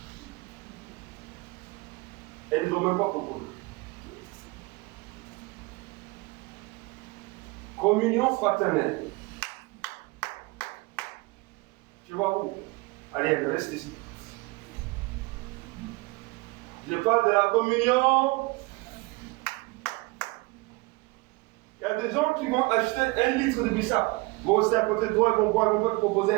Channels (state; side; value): quieter; left; 24.2 dB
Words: Et ils ne nous ont même pas proposé. Communion fraternelle. Tu vois où? Allez, reste ici. Je parle de la communion. Il y a des gens qui vont acheter 1 litre de bissap. Vont rester à côté de toi, ils vont boire, ils vont te proposer